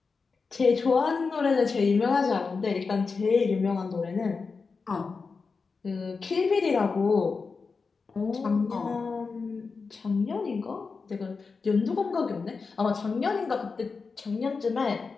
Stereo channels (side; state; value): right; quieter; 4.7 dB